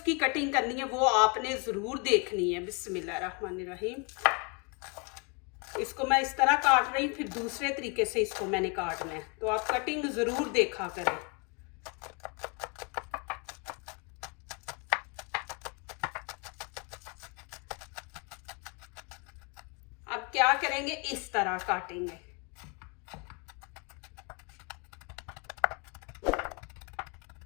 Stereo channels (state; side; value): quieter; right; 33.6 dB